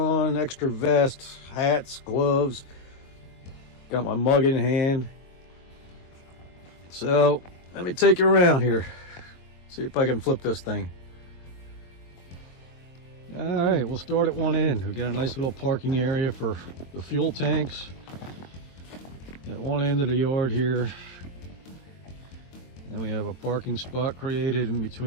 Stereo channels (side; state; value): right; late; 22 ms